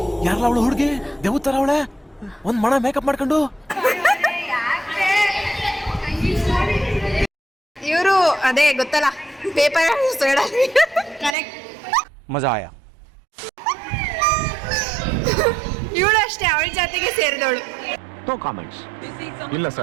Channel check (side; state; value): left; drops out; at 11.4 s